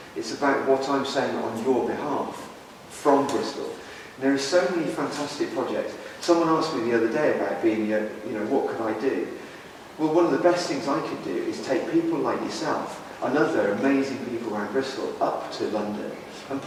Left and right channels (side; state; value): both; identical; correlation 1.00